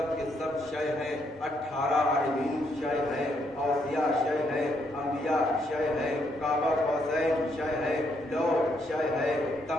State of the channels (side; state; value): both; normal; correlation 0.74